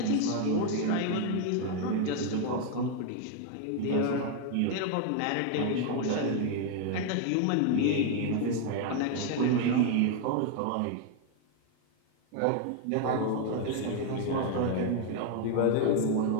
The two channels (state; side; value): different; both; correlation 0.00